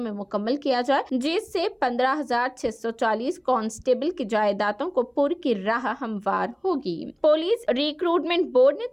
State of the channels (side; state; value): both; identical; correlation 1.00